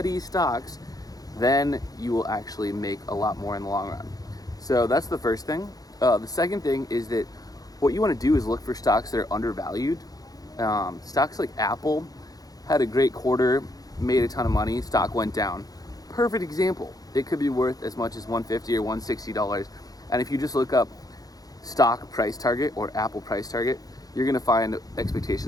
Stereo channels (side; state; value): right; late; 0.18 ms